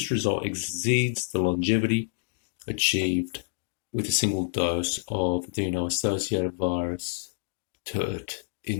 result exceeds the longevity achieved with a single dose of adeno-associated virus, TERT,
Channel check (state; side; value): silent; right; digital silence